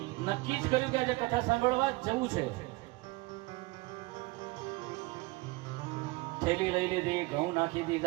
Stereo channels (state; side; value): quieter; left; 22.8 dB